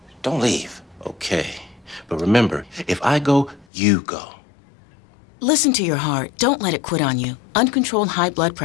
don't leave. Okay. But remember, if I go, you go. Listen to your heart. Don't let it quit on you. Uncontrolled high blood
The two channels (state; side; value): drops out; right; at 3.7 s